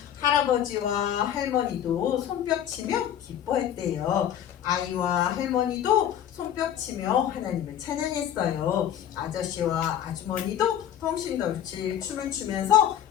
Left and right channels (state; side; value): quieter; right; 10.2 dB